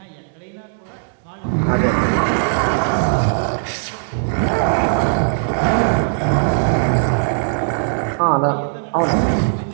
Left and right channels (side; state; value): left; silent; 66 dB below the other